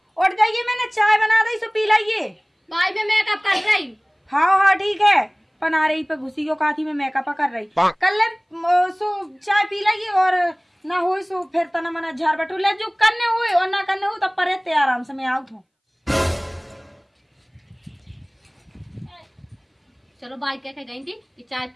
उठ जाइए मैंने चाय बना दी सो पी लाइए। भाई मैं मेकअप कर रही हाँ हाँ ठीक है पना रही पे घुसी को काथी में मेकअप कर रही कल सो चाय पी लाइए और ना हो सो फिर तना मना झाड़ बटू ले जो करने हुए और ना करने हो तब पर आराम से मैं आउट हूँ। चलो भाई कह के गई थी कि चाय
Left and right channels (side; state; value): both; identical; correlation 1.00